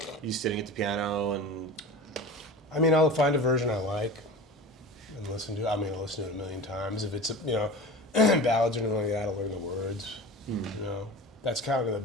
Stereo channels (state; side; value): normal; both; correlation 0.34